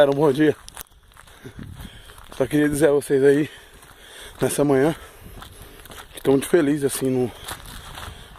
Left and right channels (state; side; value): identical; both; correlation 1.00